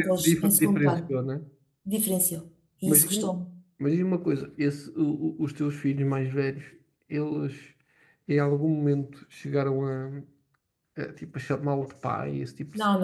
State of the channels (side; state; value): both; identical; correlation 1.00